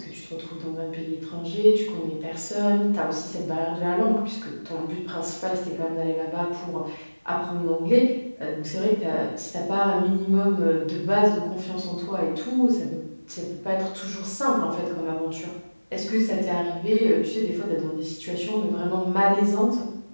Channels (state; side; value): inverted; both; correlation -1.00